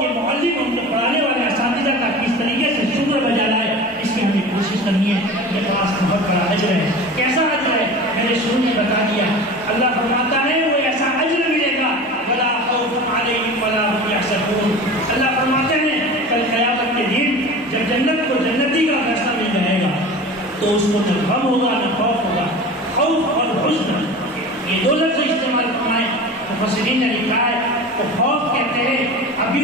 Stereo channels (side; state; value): both; normal; correlation 0.35